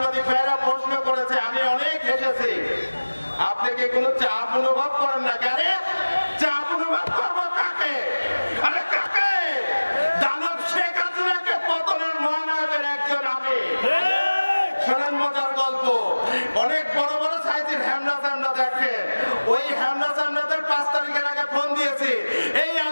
ভাইরা প্রশ্ন করেছে, আমি অনেক হেসেছি। আপনি কি কোনো চাপ অনুভব করেন না? আরে চাপ অনুভব করবো কাকে? আরে কাকে? দানব শেখ হাসিনাকে পতনের মহানায়কের একজন আমি। শোনেন মজার গল্প। অনেক বড় বড় সাইজের হ্যামনা চামড়া দেখেন, ওই হ্যামনা চামড়াদের 5 তারিখের আগে ফোন দিয়েছি, এই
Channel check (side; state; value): both; inverted; correlation -1.00